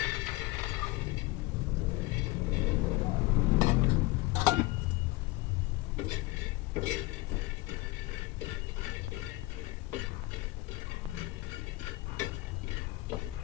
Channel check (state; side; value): quieter; right; 21.2 dB